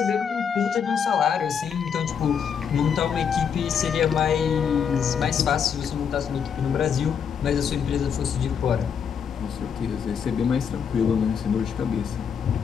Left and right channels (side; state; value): right; quieter; 7.2 dB